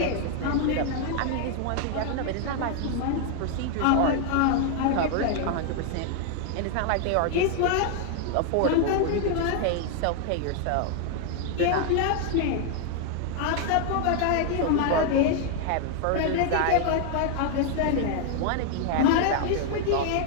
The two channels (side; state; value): both; different; correlation 0.00